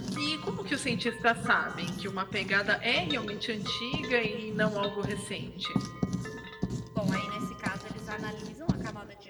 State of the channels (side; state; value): both; identical; correlation 1.00